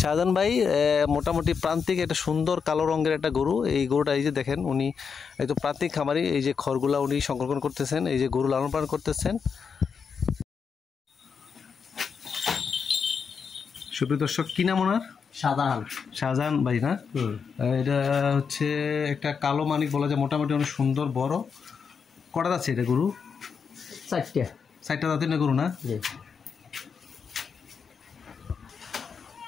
ভাই মোটামুটি প্রান্তিক একটা সুন্দর কালো রঙের একটা গরু। এই গরুটা এই যে দেখেন, উনি একদম প্রান্তিক খামারি। এই যে খড়গুলা উনি সংরক্ষণ করতেছেন, এই যে গরু লালন পালন করতেছেন। সুপ্রিয় দর্শক, কি নাম ওনার? শাহজাহান ভাই না? এটা হচ্ছে একটা কালো মানিক বলা যায়, মোটামুটি অনেক সুন্দর বড়। কটা আছে এটা গরু? 4টা দাঁতের না গরু না?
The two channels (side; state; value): right; quieter; 6.1 dB